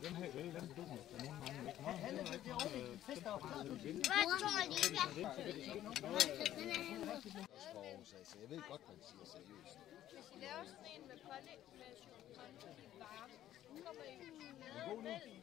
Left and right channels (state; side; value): quieter; right; 12.5 dB